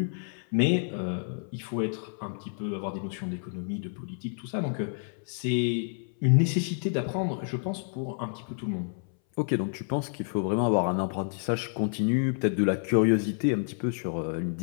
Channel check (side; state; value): right; silent; 58 dB below the other